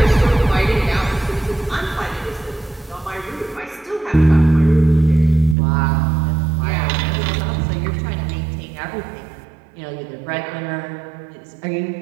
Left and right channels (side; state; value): left; drops out; at 5.6 s